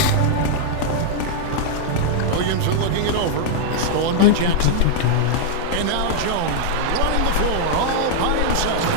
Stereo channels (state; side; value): different; both; correlation -0.01